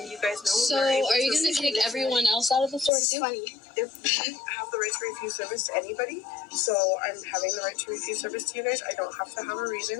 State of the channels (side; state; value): right; drops out; at 2.9 s